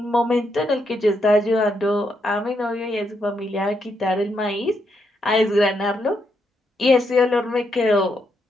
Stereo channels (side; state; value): both; normal; correlation 0.79